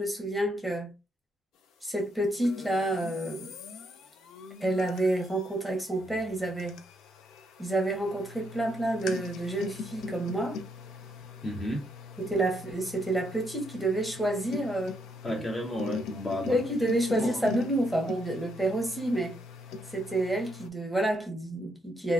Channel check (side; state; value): both; normal; correlation 0.76